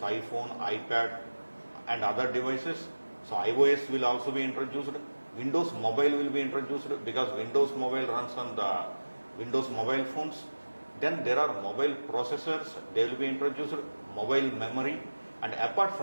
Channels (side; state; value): both; inverted; correlation -1.00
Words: iPad and other devices. So iOS will also be introduced. Windows Mobile will be introduced because Windows Mobile runs on the Windows mobile phones. Then there are mobile processors, they will be introduced, mobile memory, and apart